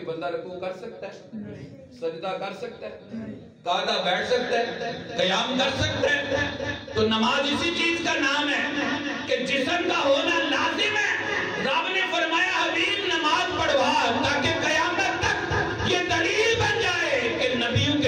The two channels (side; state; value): both; identical; correlation 1.00